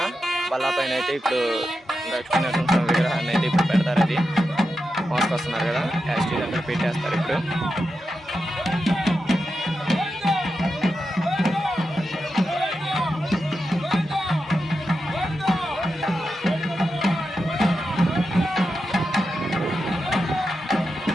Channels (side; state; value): both; normal; correlation 0.89